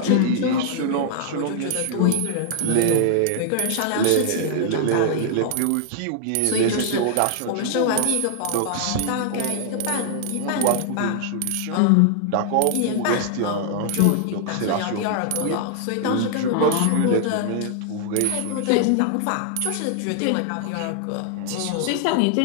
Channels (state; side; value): different; both; correlation -0.01